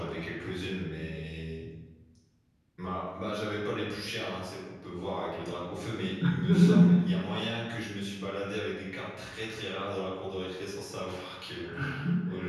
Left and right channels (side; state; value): both; identical; correlation 1.00